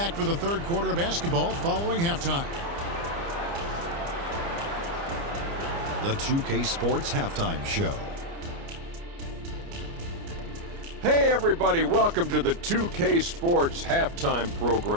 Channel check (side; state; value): left; late; 29 ms